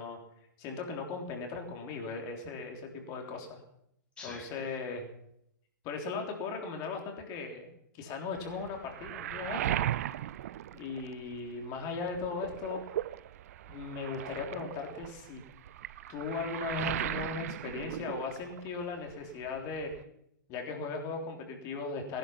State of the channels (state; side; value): normal; both; correlation -0.04